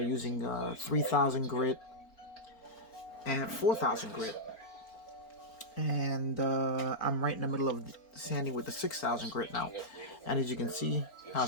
using 3000 grit and 4000 grit, and I'm right in the middle of sanding with the 6000 grit now. And as you can see how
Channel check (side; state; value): right; late; 4.4 ms